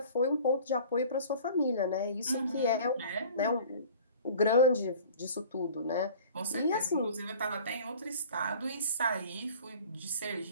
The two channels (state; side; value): inverted; both; correlation -0.45